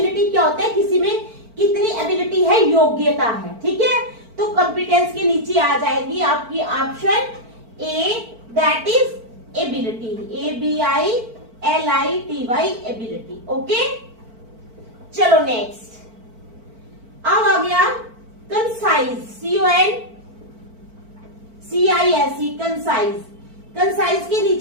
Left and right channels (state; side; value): late; left; 4.5 ms